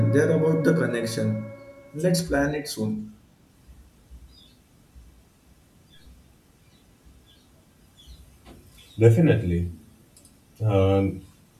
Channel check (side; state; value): both; identical; correlation 1.00